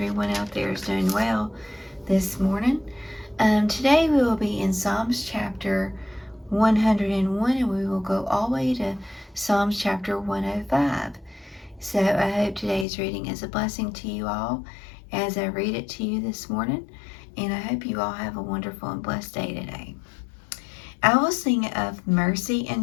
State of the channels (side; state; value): right; drops out; at 12.9 s